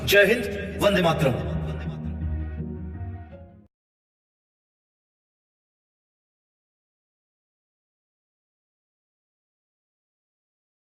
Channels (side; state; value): both; identical; correlation 1.00